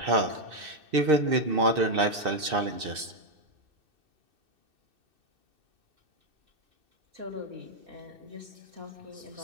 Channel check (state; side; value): late; left; 2.6 ms